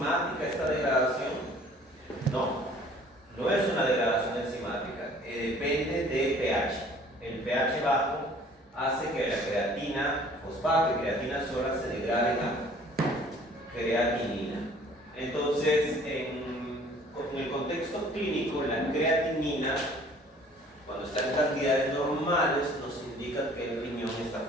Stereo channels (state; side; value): normal; both; correlation 0.53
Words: esta degradación? No, no es una degradación enzimática, depende de pH. El pH bajo hace que la creatina, fosfato y creatina sola se degraden a creatinina. Entonces, en el contexto clínico, la creatinina, cuando está en cantidades normales, nos indica que el riñón está